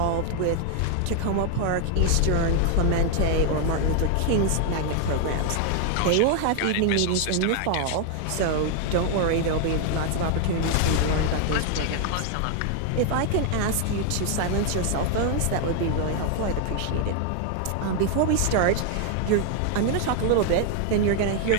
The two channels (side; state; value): both; different; correlation 0.00